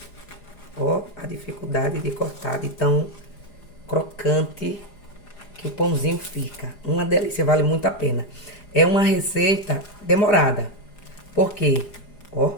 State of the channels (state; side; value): late; right; 4.9 ms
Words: Ó, a dificuldade de cortar de tão crocante que o pãozinho fica. Uma delícia, vale muito a pena. É uma receita demorada. Por quê? Ó.